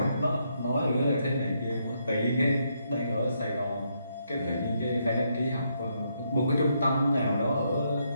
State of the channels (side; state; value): both; inverted; correlation -0.77